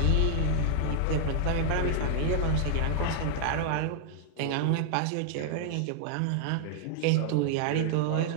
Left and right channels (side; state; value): both; different; correlation -0.01